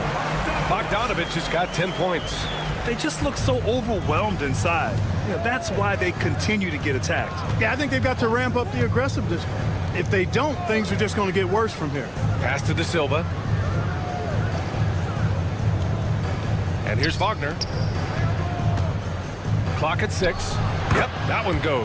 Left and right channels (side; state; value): both; identical; correlation 1.00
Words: Bogdanovich has got 10 points. They just look so overwhelmed inside. That's why they continue to get attacked. Yeah, I think they've got to ramp up the aggressiveness. If they don't, things are just going to get worse from here. Pass to De Silva. And here's Wagner. Clock at 6. Yep, that one